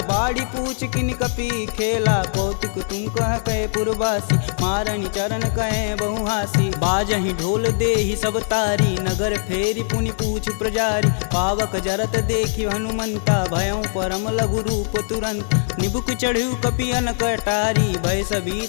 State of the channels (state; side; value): silent; right; 64 dB below the other